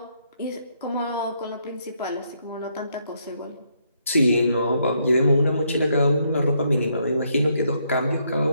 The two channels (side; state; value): both; inverted; correlation -0.74